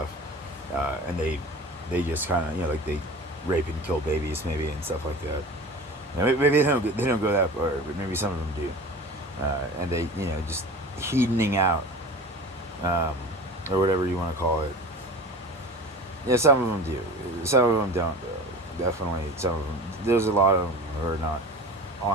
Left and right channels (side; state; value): both; normal; correlation 0.36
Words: and they just kind of, like they rape and kill babies maybe and stuff like that. Maybe they don't go that far, but maybe some of them do, and they just hedoning out, or whatever you want to call it. Yeah, some of them do. Some of them don't, though. Definitely, some of them. There's a lot of them who are not